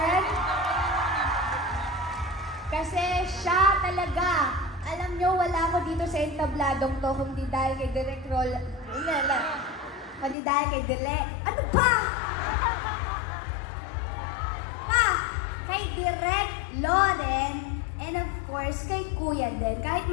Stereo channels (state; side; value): drops out; right; at 10.4 s